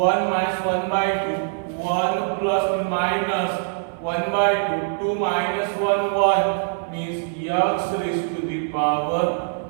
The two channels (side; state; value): left; silent; 61 dB below the other